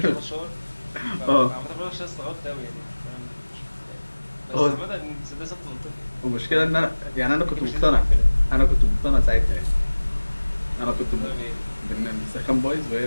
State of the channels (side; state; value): both; inverted; correlation -1.00